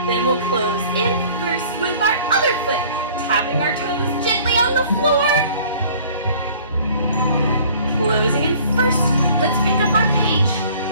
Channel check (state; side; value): inverted; both; correlation -0.52